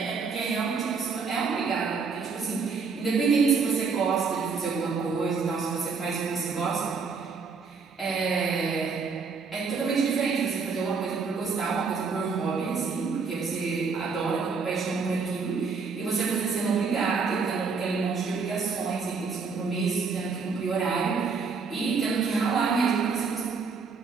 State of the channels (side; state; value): left; quieter; 5.1 dB